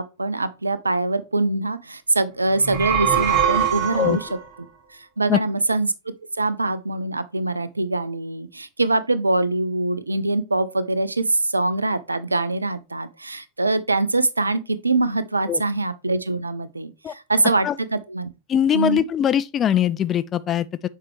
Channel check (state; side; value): inverted; both; correlation -0.50